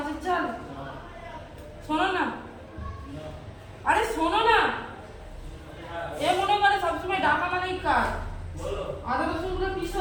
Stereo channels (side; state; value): both; identical; correlation 1.00